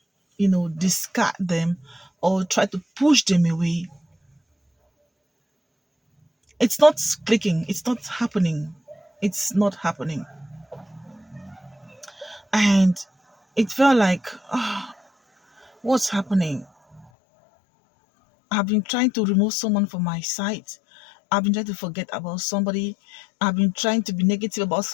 discard them or try to push them away, it's not clicking. It's not happening. It's not happening. And it felt like, what's happening? I've been trying to remove someone from my sight. I've been trying to forget about somebody. I've been trying to be negative about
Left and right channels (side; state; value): right; drops out; at 17.1 s